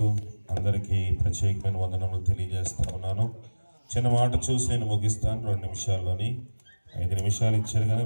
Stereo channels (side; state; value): both; inverted; correlation -1.00